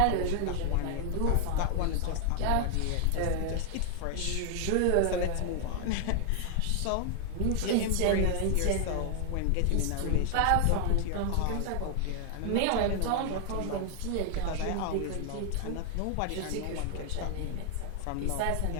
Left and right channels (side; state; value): both; different; correlation 0.00